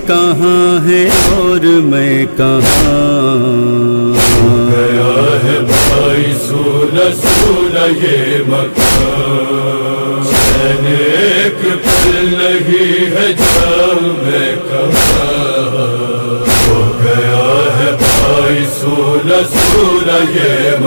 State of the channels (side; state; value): both; inverted; correlation -1.00